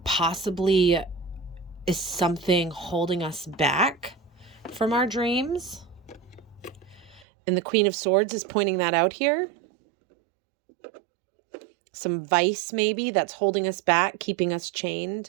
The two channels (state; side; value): drops out; left; at 7.2 s